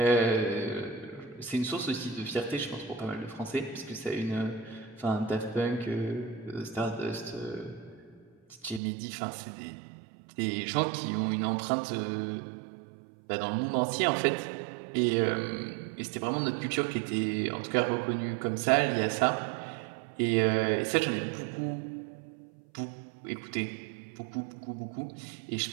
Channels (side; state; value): left; drops out; at 8.8 s